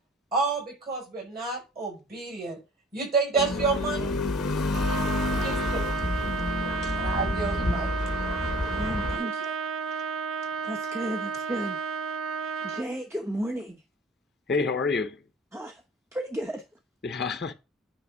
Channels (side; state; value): both; normal; correlation 0.47